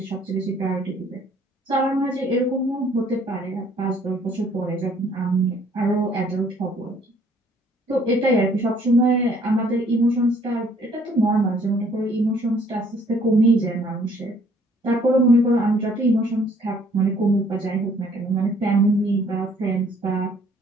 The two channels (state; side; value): normal; both; correlation 0.61